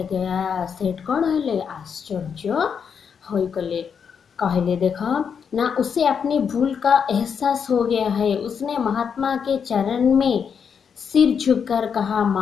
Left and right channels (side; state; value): right; quieter; 6.8 dB